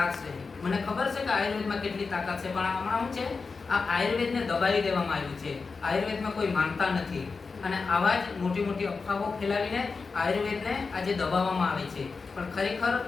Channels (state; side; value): quieter; right; 4.6 dB